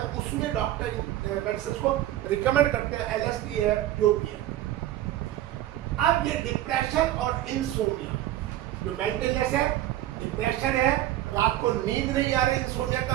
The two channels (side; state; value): left; quieter; 13.8 dB